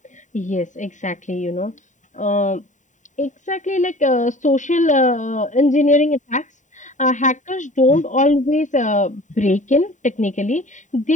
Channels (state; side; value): late; right; 0.36 ms